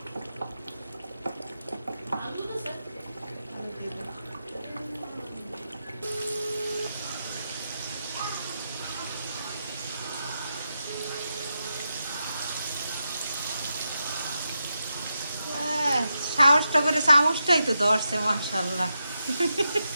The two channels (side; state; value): both; inverted; correlation -0.87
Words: আলু তো স্যার সাহসটা করে চামচটাই তো ধরছে মাশাআল্লাহ